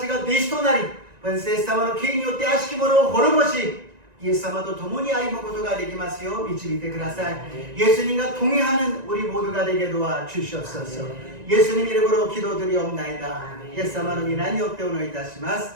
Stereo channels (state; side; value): late; left; 1.9 ms